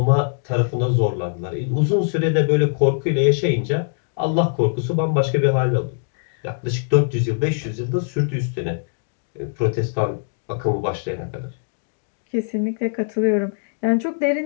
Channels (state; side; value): silent; right; digital silence